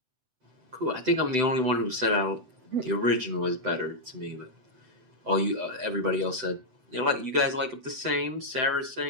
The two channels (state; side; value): late; left; 7.9 ms